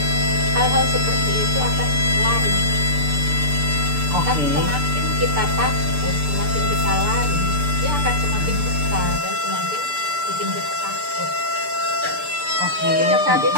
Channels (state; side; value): late; left; 6.8 ms